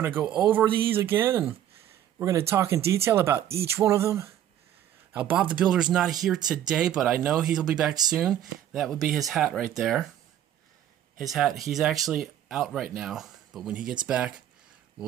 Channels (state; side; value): quieter; left; 11.1 dB